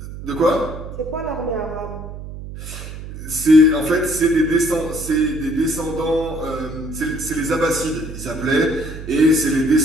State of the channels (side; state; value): right; noise; hum, 11 dB below the sound